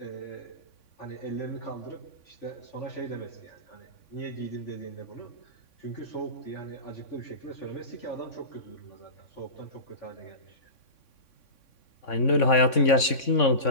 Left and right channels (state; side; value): late; right; 3.6 ms